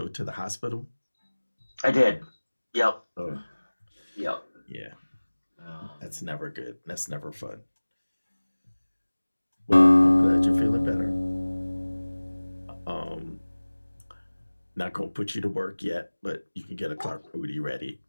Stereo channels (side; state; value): both; inverted; correlation -1.00